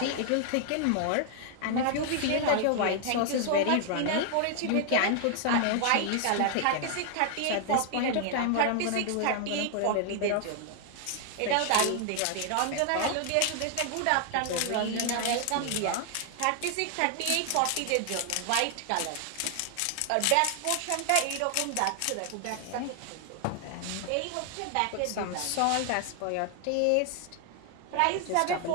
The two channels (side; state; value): both; different; correlation 0.00